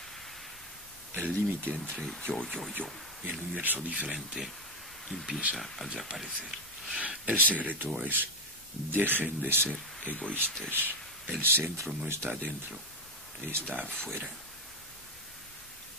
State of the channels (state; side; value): normal; both; correlation 0.11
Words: el límite entre yo y el universo diferente empieza a desaparecer. El secreto es: dejen de ser egoístas. El centro no está adentro, está afuera.